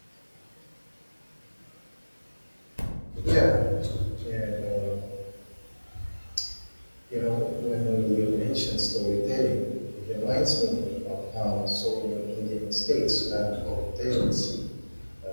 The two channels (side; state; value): both; inverted; correlation -1.00